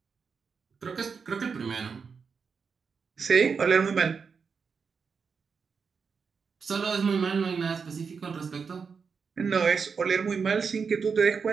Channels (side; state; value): left; quieter; 5.7 dB